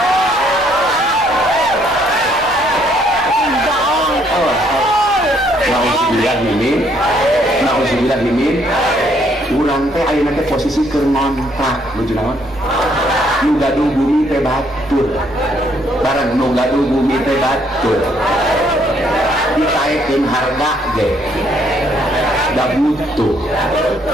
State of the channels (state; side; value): normal; both; correlation 0.68